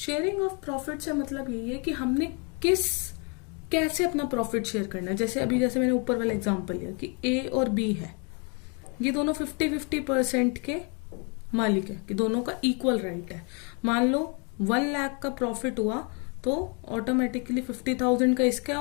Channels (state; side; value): quieter; right; 34.7 dB